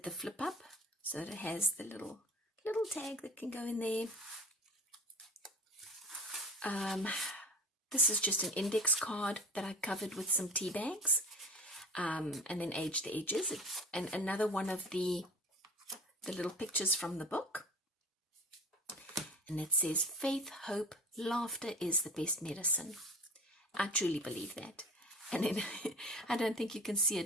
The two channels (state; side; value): normal; both; correlation 0.37